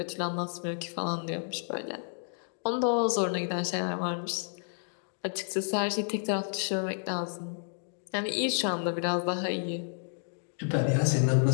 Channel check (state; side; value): silent; right; digital silence